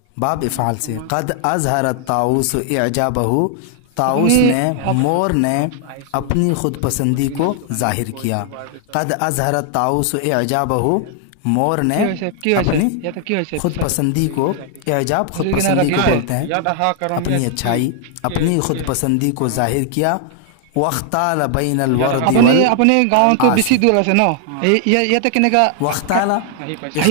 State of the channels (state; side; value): different; both; correlation 0.00